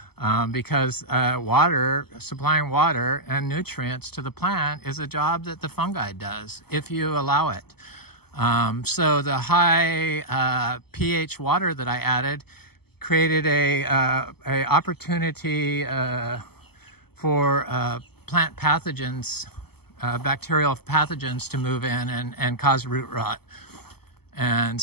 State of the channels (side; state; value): right; late; 0.96 ms